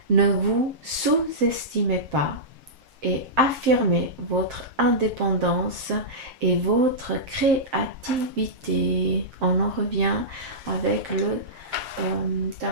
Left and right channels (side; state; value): left; late; 7.6 ms